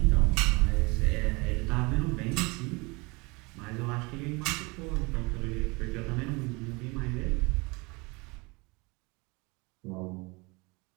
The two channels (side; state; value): left; quieter; 26.8 dB